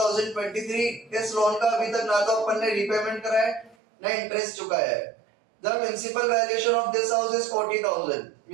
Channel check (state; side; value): drops out; left; at 3.8 s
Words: इस loan का अभी तक ना तो अपन ने रीपेमेंट करा है ना इंटरेस्ट चुकाया है. The municipal valuation of this house is 40,000.